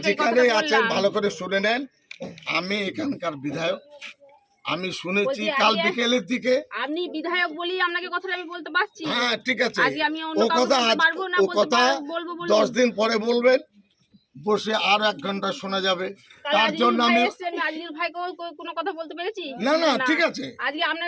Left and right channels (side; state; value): both; identical; correlation 1.00